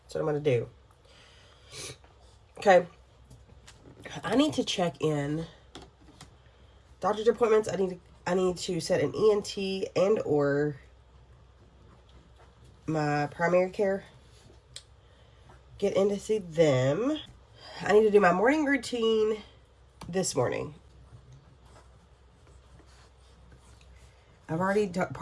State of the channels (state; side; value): identical; both; correlation 1.00